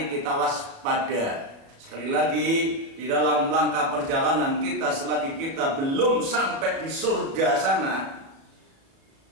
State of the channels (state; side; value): late; left; 37 ms